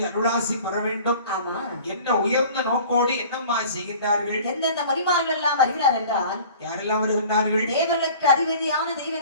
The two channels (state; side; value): inverted; both; correlation -0.46